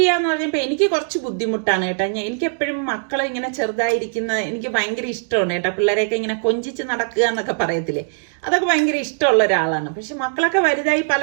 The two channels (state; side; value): silent; left; digital silence